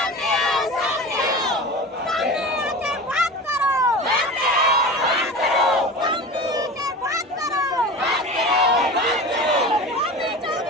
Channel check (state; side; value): normal; both; correlation 0.32